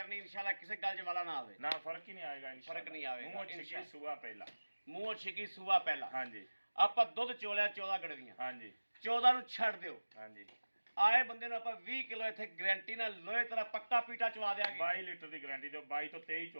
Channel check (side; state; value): both; inverted; correlation -1.00